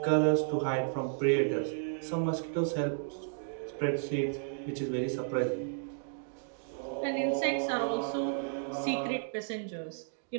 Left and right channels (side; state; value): left; silent; digital silence